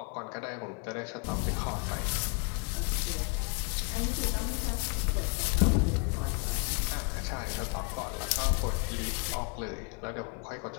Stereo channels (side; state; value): right; quieter; 35.6 dB